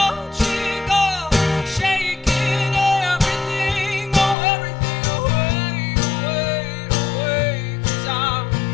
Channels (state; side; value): drops out; right; at 4.4 s